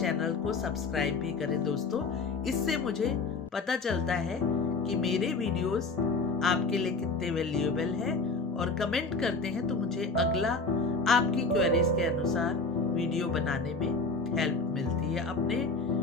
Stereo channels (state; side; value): quieter; right; 3.8 dB